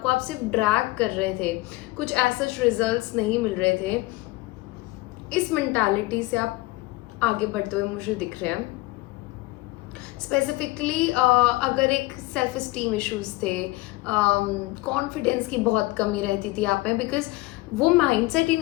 को आप सिर्फ ड्रैग कर रहे थे, कुछ ऐसे रिजल्ट्स नहीं मिल रहे थे, इस मेंटालिटी से आप आगे बढ़ते हुए मुझे दिख रहे हैं। स्पेसिफिकली अगर एक सेल्फ इस्टीम इश्यूज थे, कॉन्फिडेंस की बहुत कमी रहती थी आप में, बिकॉज वो माइंडसेट ही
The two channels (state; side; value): quieter; right; 20.6 dB